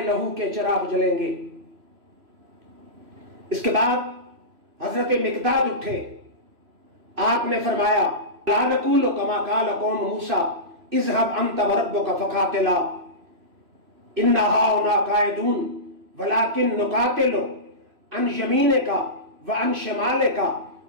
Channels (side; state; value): left; late; 3.0 ms